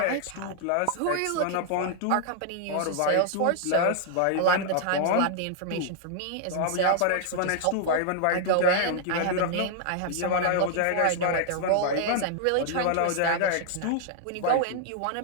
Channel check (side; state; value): both; different; correlation 0.00